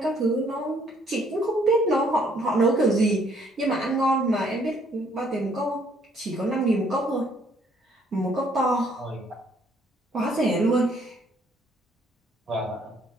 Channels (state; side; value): normal; both; correlation 0.65